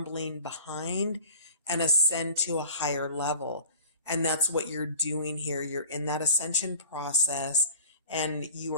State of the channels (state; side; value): inverted; both; correlation -0.42